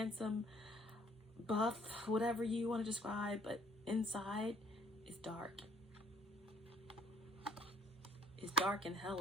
buff, whatever you want to describe, but inside is dark. It's dark and hell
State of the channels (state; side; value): normal; both; correlation 0.61